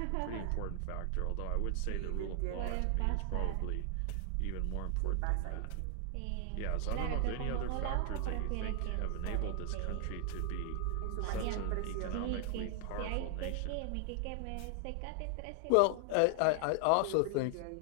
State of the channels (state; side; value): different; both; correlation 0.00